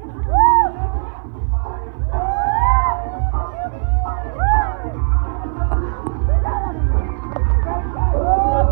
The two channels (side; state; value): left; silent; 59 dB below the other